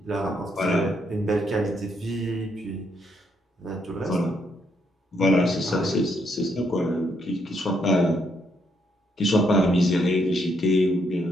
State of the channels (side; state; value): both; normal; correlation 0.75